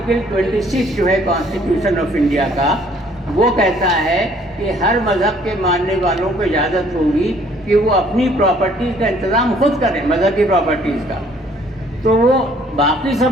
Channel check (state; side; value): normal; both; correlation 0.60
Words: 26 جو ہے کانسٹیٹیوشن آف انڈیا کا، وہ کہتا ہے کہ ہر مذہب کے ماننے والوں کو اجازت ہوگی کہ وہ اپنی پراپرٹیز کا انتظام خود کریں، مذہبی پراپرٹیز کا۔ تو وہ باقی